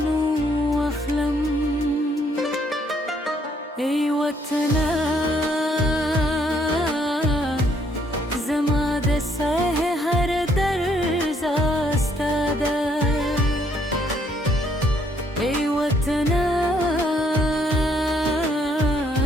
و اخلم ای وطنه زما د سه هر درز استاده ای وطنه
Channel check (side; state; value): both; normal; correlation 0.68